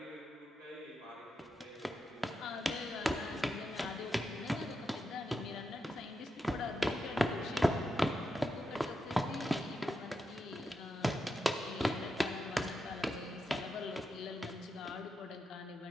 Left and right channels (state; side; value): normal; both; correlation 0.86